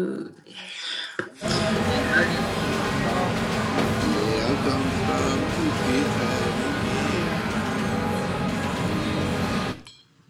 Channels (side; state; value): both; identical; correlation 1.00